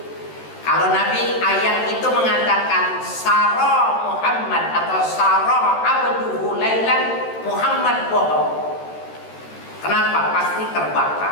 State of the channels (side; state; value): right; late; 13 ms